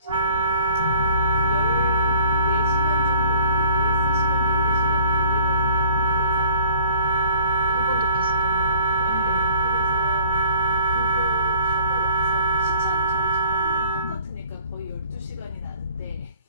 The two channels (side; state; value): both; inverted; correlation -0.50